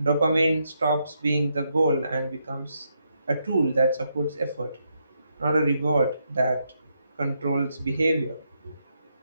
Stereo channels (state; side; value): inverted; both; correlation -0.79